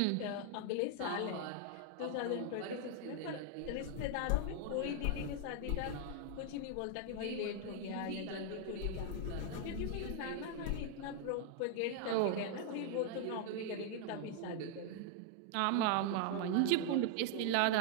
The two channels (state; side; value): different; both; correlation 0.00